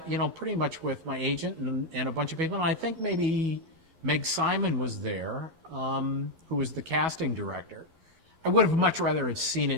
you know, pretty much with my agent and a bunch of people. And I think maybe Meg Simon was there, who was the casting director. I would have much rather have seen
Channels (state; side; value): late; left; 11 ms